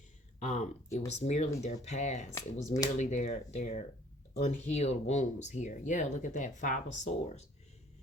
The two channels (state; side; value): normal; both; correlation 0.55